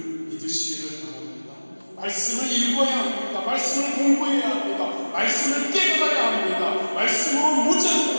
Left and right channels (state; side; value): inverted; both; correlation -1.00